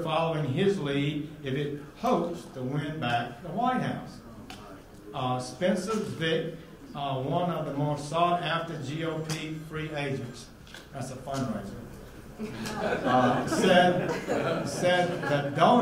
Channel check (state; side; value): identical; both; correlation 1.00